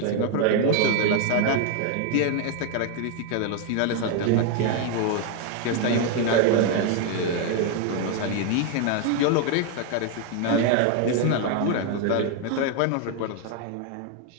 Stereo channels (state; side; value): different; both; correlation 0.01